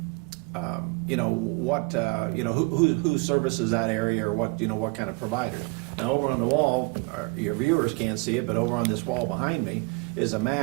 You know, what, you know, who services that area, or what, you know, what kind of providers. Now, over on the wall, your viewers can't see it, but over on this wall behind me is a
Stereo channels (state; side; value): quieter; left; 29.6 dB